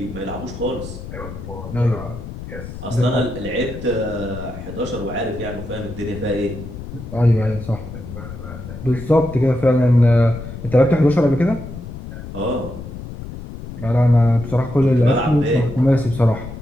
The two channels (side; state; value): left; noise; rumble, 11 dB below the sound